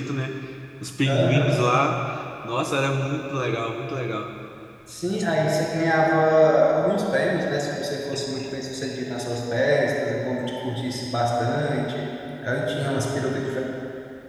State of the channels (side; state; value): both; identical; correlation 1.00